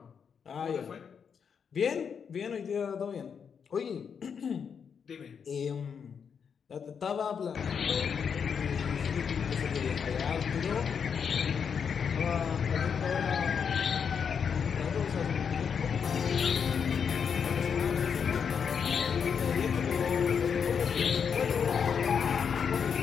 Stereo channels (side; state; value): right; quieter; 6.8 dB